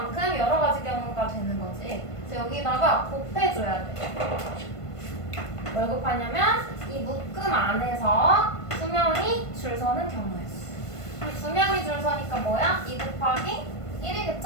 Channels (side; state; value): right; late; 1.5 ms